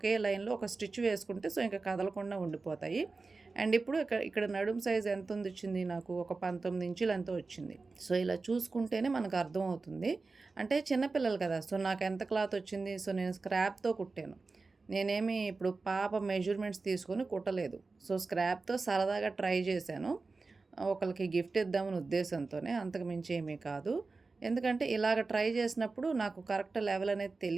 లైన్లో ఒక స్టిచ్ వేసుకుంటే సో ఇంకా కదలకుండా ఉండిపోతాయి. అండ్ ఇప్పుడు ఇక్కడ నడుము సైజ్ ఎంత వచ్చింది నాకు, ఒక 19 ఇంచులు ఎంతో వచ్చింది. సో ఇలా చూసుకుంటేనే మనకు అర్థమవుతుంది. అంటే చిన్నపిల్లలు కదా, సో నాకు ఎంత క్లాత్ వచ్చింది, సో నేను స్క్రాప్తో కుట్టాను. నేనేమి ఇప్పుడు పాప మెజర్మెంట్స్ తీసుకొని కుట్టలేదు. సో స్క్రాప్తో సరదాగా ట్రై చేశాను, ఒకరికి గిఫ్ట్ ఇద్దామని ఉద్దేశంతోనే, అంతకు మించి ఏమీ కాదు. ఎందుకంటే ఇలాగ ట్రై చేసినప్పుడు నాకు కరెక్ట్ లెవెల్ అనేది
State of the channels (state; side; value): quieter; left; 3.9 dB